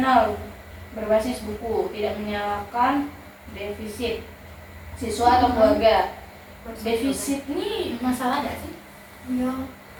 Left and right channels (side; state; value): both; identical; correlation 1.00